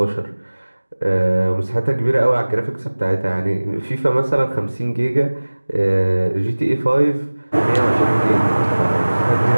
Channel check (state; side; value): inverted; both; correlation -1.00